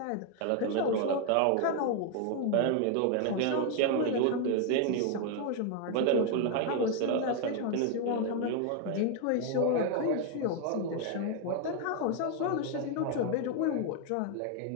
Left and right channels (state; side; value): different; both; correlation 0.00